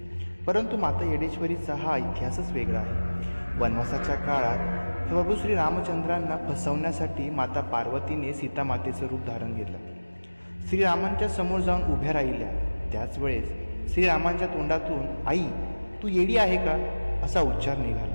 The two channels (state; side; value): inverted; both; correlation -1.00